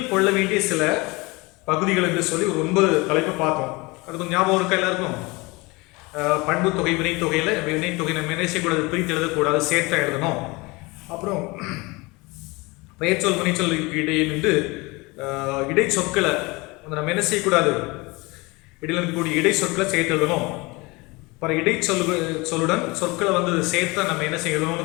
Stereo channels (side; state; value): right; quieter; 24.8 dB